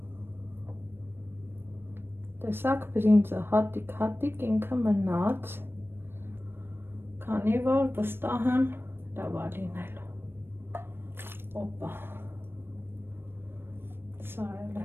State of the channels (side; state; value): left; late; 0.10 ms